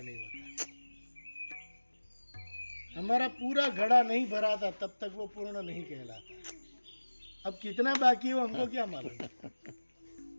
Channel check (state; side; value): inverted; both; correlation -1.00